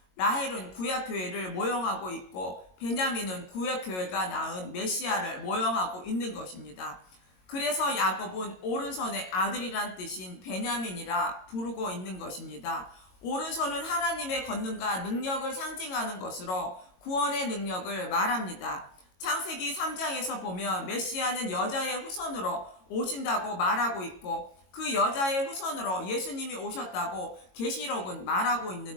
라헬은 구약 교회를 모형하고 있고 베냐민은 구약 교회가 낳은 메시아를 모형하고 있는 것입니다. 그래서 야곱은 오른손의 아들이란 뜻인 베냐민이라 부르고 있는 것입니다. 오른손은 하나님의 권능과 능력을 상징하는 것으로 구원의 능력을 말합니다. 창세기 3장에서 보면 메시아는 여자의 후손으로 오신다고 말하고 있고 그 여자의 후손으로 예수님이 오셨다고 계시록은 말하고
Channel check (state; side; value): late; right; 22 ms